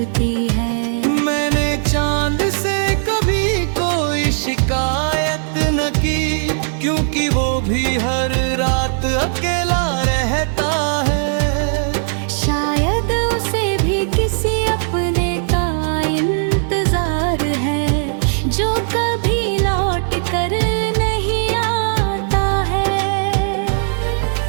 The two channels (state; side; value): silent; left; digital silence